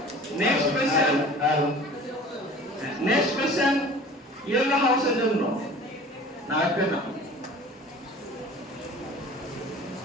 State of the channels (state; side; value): normal; both; correlation 0.44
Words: নেক্সট কোশ্চেন ইয়েলো হাউসের জন্য না একটা না।